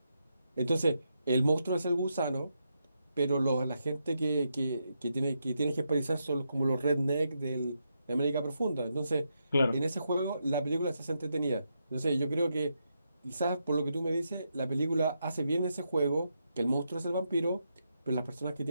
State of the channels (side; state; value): both; inverted; correlation -0.83